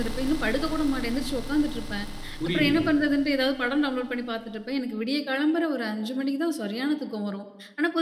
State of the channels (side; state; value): both; identical; correlation 1.00